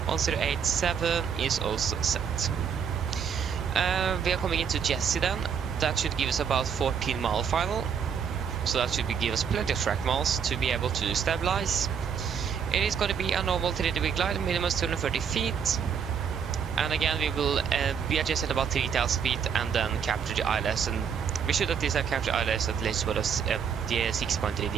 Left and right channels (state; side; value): quieter; left; 7.1 dB